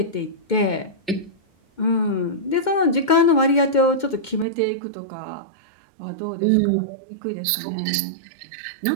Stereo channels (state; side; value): drops out; left; at 4.5 s